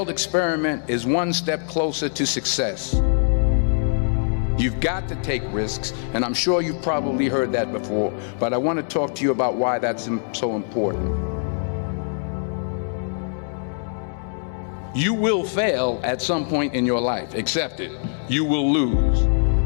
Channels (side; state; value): right; silent; digital silence